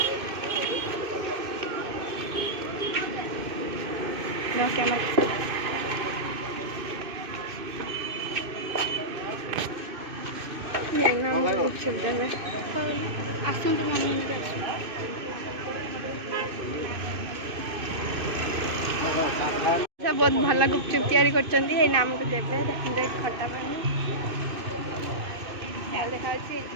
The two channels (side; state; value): left; late; 2.6 ms